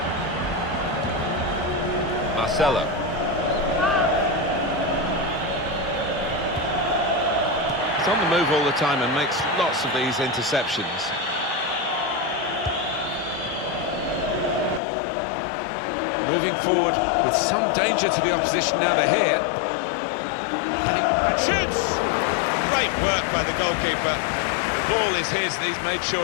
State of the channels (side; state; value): right; drops out; at 14.8 s